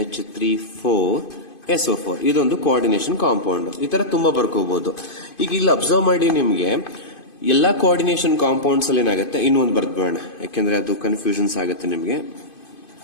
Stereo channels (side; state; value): right; late; 2.5 ms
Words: 4 SO4. ಇದೊಂದು ಕೋಆರ್ಡಿನೇಷನ್ ಕಾಂಪೌಂಡ್. ಈ ತರ ತುಂಬಾ ಬರ್ಕೋಬಹುದು. ಈಗ ಇಲ್ಲಿ ಅಬ್ಸರ್ವ್ ಮಾಡಿ, ನಿಮ್ಗೆ ಎಲ್ಲಾ ಕೋಆರ್ಡಿನೇಷನ್ ಕಾಂಪೌಂಡ್ಸ್ ಅಲ್ಲಿ ಏನಾಗುತ್ತೆ, ಇನ್ನೊಂದು ಬರ್ದ್ಬೇಡ, ಯಾಕೆಂದ್ರೆ ಅದು ಕನ್ಫ್ಯೂಷನ್ಸ್ ಆಗುತ್ತೆ ನಿಮ್ಗೆ.